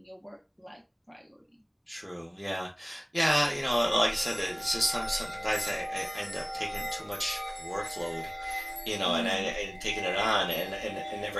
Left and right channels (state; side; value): identical; both; correlation 1.00